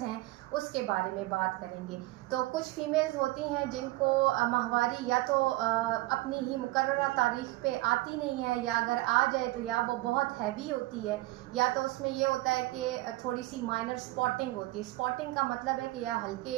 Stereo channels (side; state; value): left; quieter; 19.7 dB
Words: हैं उसके बारे में बात करेंगे। तो कुछ फीमेल्स होती हैं जिनको माहवारी या तो अपनी ही मुकर्ररा तारीख पे आती नहीं है, या अगर आ जाए तो या वो बहुत हैवी होती है, या तो उसमें ये होता है कि थोड़ी सी माइनर स्पॉटिंग होती है। स्पॉटिंग का मतलब है कि या